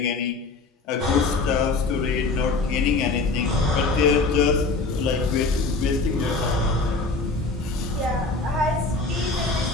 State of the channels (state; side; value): quieter; right; 3.8 dB